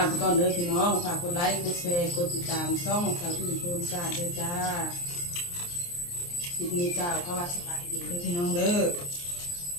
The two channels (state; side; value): late; right; 29 ms